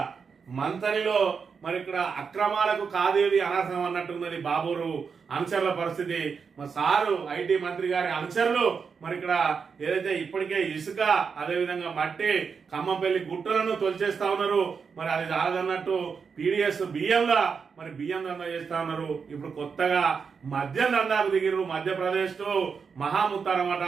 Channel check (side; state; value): left; quieter; 5.8 dB